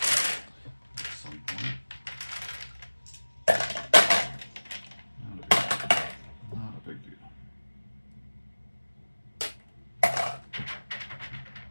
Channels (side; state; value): both; inverted; correlation -1.00